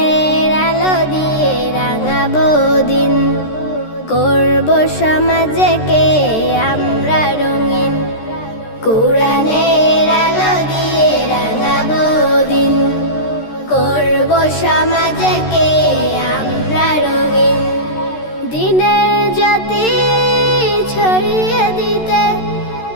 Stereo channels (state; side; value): late; right; 13 ms